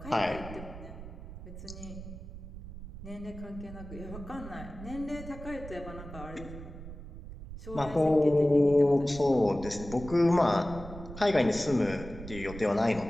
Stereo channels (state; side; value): noise; right; rumble, 12 dB below the sound